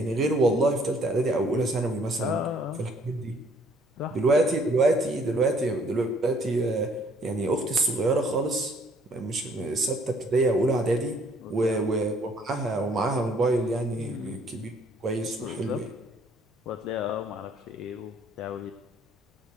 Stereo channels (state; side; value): normal; both; correlation 0.62